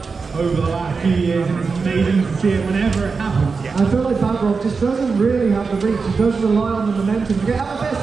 over the last few years, and it's amazing to see it whenever it happens. I feel like Backrock just doesn't really have the reach. He does rely on the momentum to get out of this.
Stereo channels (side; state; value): left; quieter; 4.8 dB